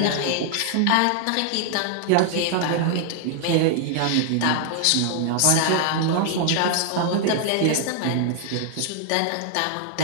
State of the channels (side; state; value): both; different; correlation 0.00